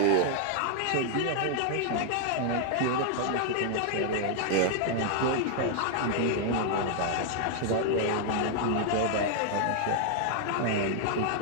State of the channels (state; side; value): different; both; correlation 0.00